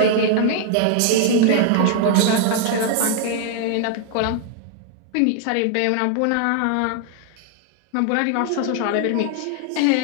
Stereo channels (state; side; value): different; both; correlation 0.00